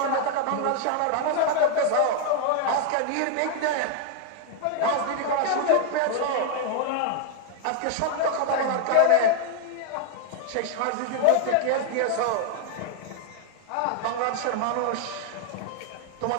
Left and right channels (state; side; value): different; both; correlation 0.00